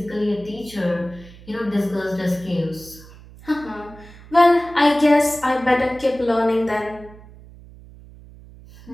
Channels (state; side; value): noise; right; hum, 20 dB below the sound